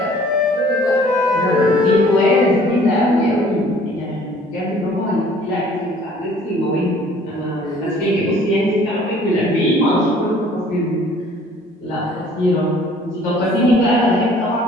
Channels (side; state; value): both; normal; correlation 0.54